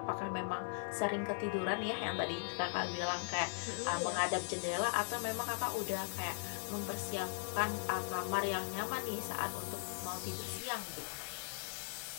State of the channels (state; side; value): silent; right; 52 dB below the other